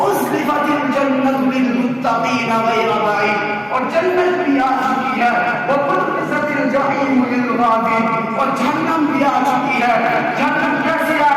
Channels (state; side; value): identical; both; correlation 1.00